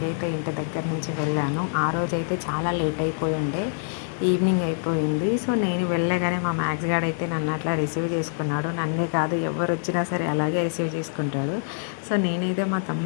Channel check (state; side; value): silent; right; digital silence